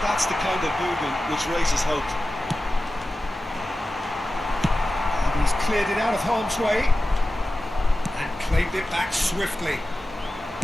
that's the kind of movement which raises hope. And he's cleared it out of harm's way and claimed it back swiftly.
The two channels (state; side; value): normal; both; correlation 0.94